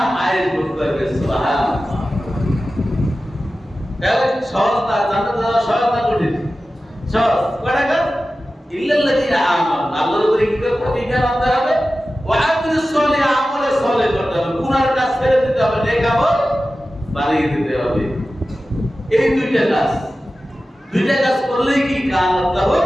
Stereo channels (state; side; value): normal; both; correlation 0.94